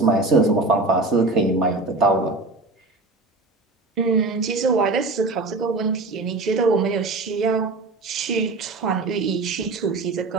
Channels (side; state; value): left; quieter; 3.3 dB